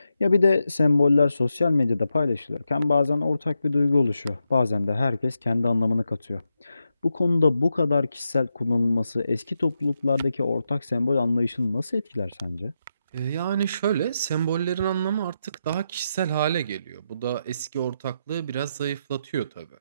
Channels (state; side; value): inverted; both; correlation -0.85